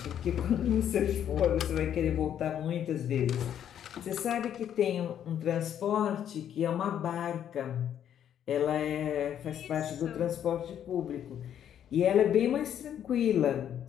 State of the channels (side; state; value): right; quieter; 9.8 dB